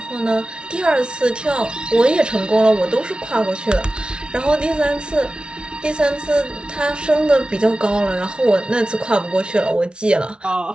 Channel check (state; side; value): late; left; 0.056 ms